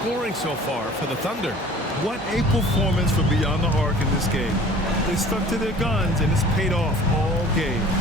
so far for the Thunder. What a performance for Beyond the Arc in this game. They stuck to their guns, and it's paid off all game.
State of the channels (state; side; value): normal; both; correlation 0.47